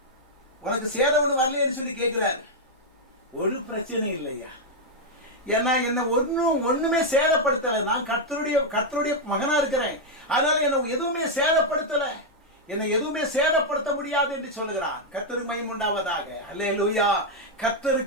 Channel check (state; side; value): normal; both; correlation -0.01